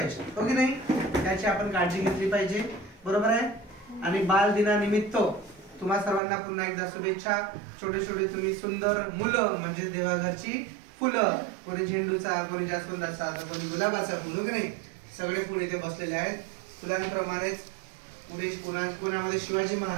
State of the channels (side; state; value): left; drops out; at 6.2 s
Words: हो की नाही? त्याची आपण काळजी घेतली पाहिजे, बरोबर आहे? आणि बाल दिनानिमित्त तुम्हा सर्वांना पुन्हा एकदा शुभेच्छा. छोटे छोटे तुम्ही सुंदर मुलं म्हणजे देवाघरची फुलं, कोणी झेंडूचा, कोणी जास्वंदाचा, तर कोणी गुलाबाचा फुल, हो की नाही? सगळे फुल इथे बसलेले आहेत. फुलांप्रमाणेच पुढे कोणामध्ये शिवाजी